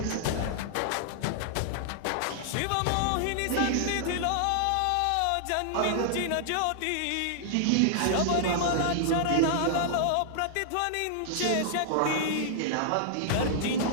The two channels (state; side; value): different; both; correlation -0.01